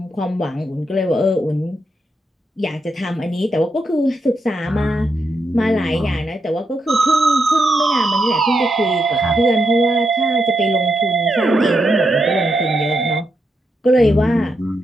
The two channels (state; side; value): normal; both; correlation 0.83